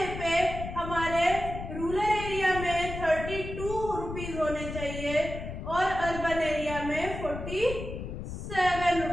पे हमारे रूरल एरिया में 32 रुपीज होने चाहिए और अर्बन एरिया में 47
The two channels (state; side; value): noise; left; rumble, 8 dB below the sound